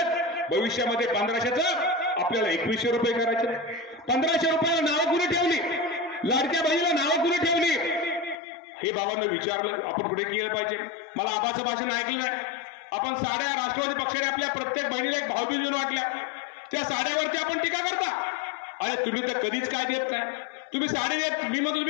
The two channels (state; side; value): drops out; right; at 8.3 s